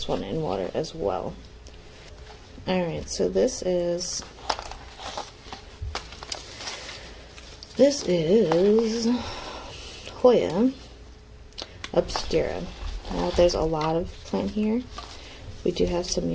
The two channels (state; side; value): identical; both; correlation 1.00